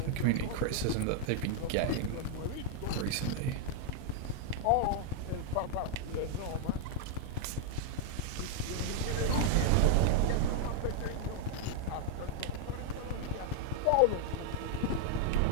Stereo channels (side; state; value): both; different; correlation 0.00